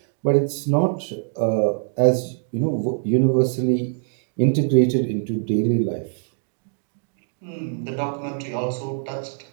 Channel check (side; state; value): left; silent; digital silence